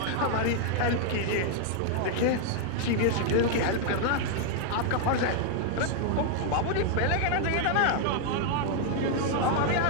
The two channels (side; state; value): both; different; correlation 0.00